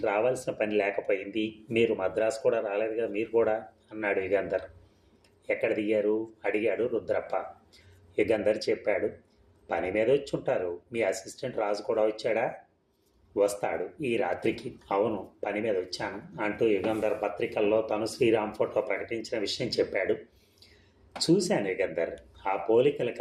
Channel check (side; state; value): both; identical; correlation 1.00